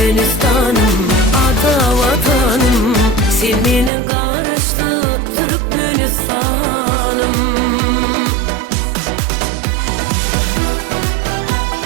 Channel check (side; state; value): left; drops out; at 3.9 s